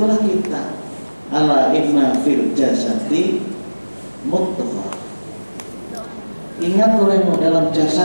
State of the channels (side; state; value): both; inverted; correlation -1.00